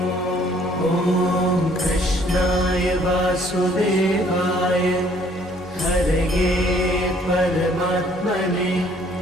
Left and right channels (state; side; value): normal; both; correlation 0.61